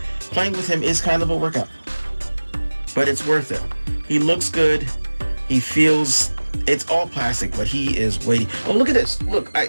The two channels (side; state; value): both; inverted; correlation -1.00